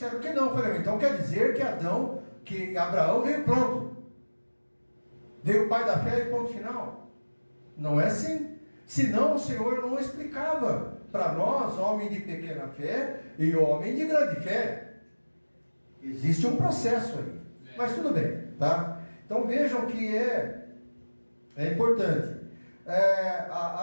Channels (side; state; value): both; inverted; correlation -1.00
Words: que não. Eu falei, então quer dizer que Abraão veio pronto. Veio o pai da fé e ponto final. Não é assim. Senão o Senhor não explicava para nós, homem de pequena fé e homem de grande fé. Existe um processo aí. Mas tudo bem, tá? Então vejam que é importante.